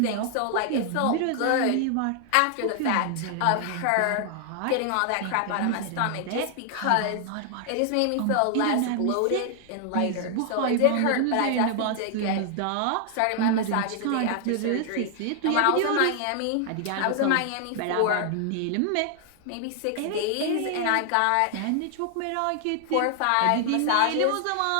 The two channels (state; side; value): different; both; correlation 0.00